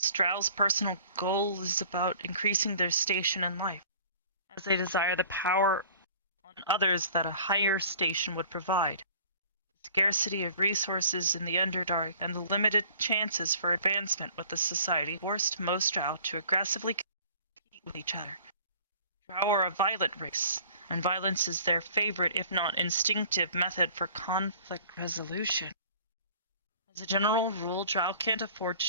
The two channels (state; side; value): inverted; both; correlation -0.49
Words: Drow's personal goal is about increasing their station in life, as they desire the power on others that a higher station would provide. The scarcity of resources in the Underdark and the limited chances for advancement with the society forced most Drow to aggressively compete with each other. Drow are a violent race, and violence is their favorite, if not instinctive, method for conflict resolution. As a general rule, Drow can't afford to